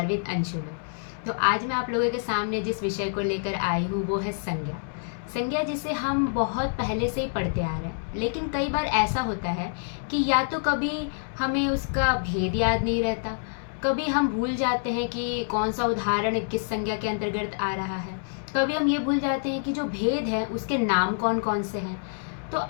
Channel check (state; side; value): silent; right; digital silence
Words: विद अंशु में। तो आज मैं आप लोगों के सामने जिस विषय को लेकर आई हूँ वो है संज्ञा। संज्ञा जिसे हम बहुत पहले से ही पढ़ते आ रहे हैं, लेकिन कई बार ऐसा होता है कि या तो कभी हमें उसका भेद याद नहीं रहता, कभी हम भूल जाते हैं कि कौन सा उदाहरण किस संज्ञा के अंतर्गत आ रहा है, कभी हम ये भूल जाते हैं कि जो भेद है उसके नाम कौन कौन से हैं। तो